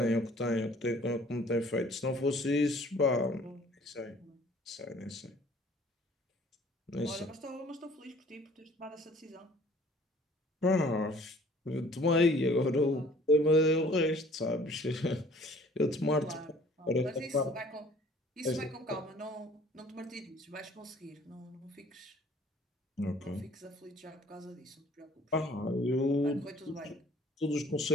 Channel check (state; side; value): normal; both; correlation 0.54